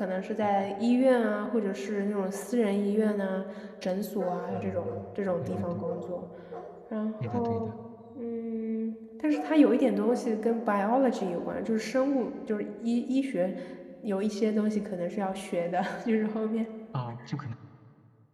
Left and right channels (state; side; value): identical; both; correlation 1.00